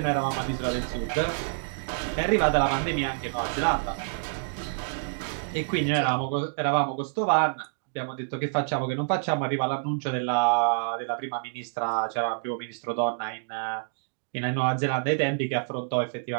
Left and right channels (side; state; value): left; silent; digital silence